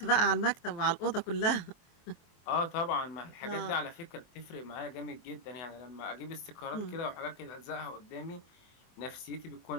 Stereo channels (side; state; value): right; late; 23 ms